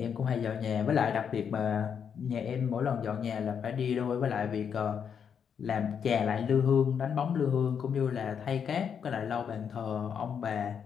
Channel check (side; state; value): right; quieter; 7.4 dB